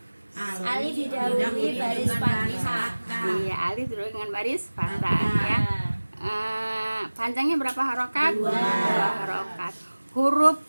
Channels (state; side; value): inverted; both; correlation -1.00